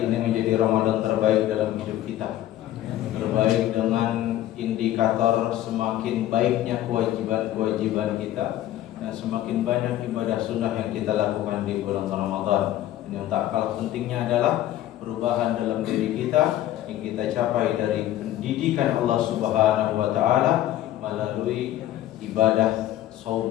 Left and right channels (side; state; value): right; quieter; 13.3 dB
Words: ini menjadi Ramadan terbaik dalam hidup kita. Terbaik dengan indikator semakin baiknya kewajiban-kewajiban kita dan semakin banyak ibadah sunnah yang kita lakukan di bulan Ramadan. Dan yang tak kalah pentingnya adalah perubahan dalam diri kita yang kita capai dari pendidikan Allah Subhanahu wa taala melalui ibadah